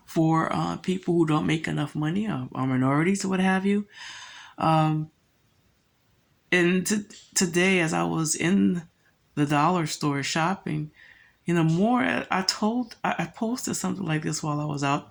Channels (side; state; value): both; identical; correlation 1.00